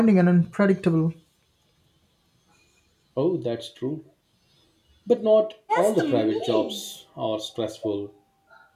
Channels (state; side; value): identical; both; correlation 1.00